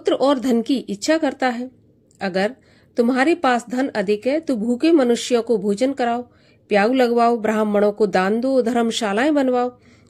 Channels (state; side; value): identical; both; correlation 1.00